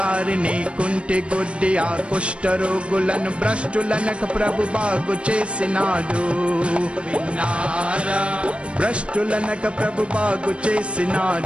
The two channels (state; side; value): late; left; 0.059 ms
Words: కుంటి గుడ్డి ఆ కుష్ఠరోగులను భ్రష్టులనక ప్రభు బాగు చేసినాడు విన్నారా భ్రష్టులనక ప్రభు బాగు